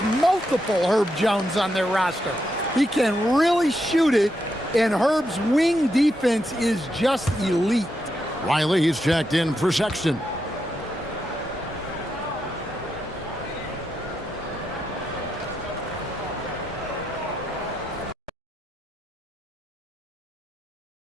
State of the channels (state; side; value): normal; both; correlation 0.83